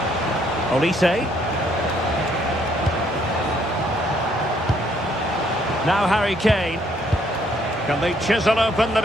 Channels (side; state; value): both; normal; correlation 0.68